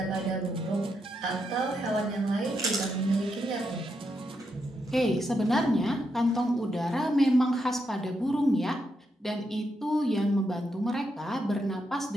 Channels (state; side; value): normal; both; correlation 0.82